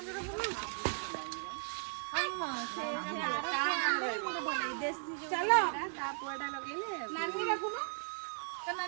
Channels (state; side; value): silent; left; digital silence